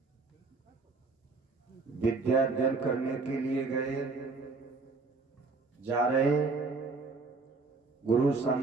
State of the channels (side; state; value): left; quieter; 4.0 dB